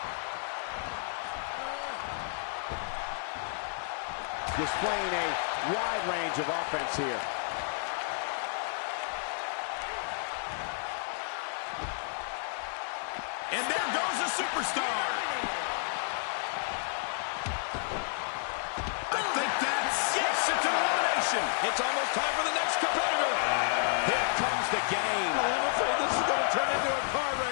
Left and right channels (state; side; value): silent; right; 57 dB below the other